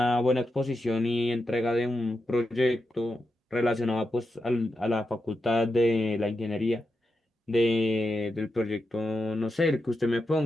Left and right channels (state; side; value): normal; both; correlation 0.87